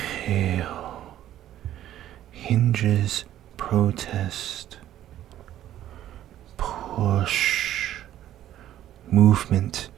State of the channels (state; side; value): quieter; left; 12.4 dB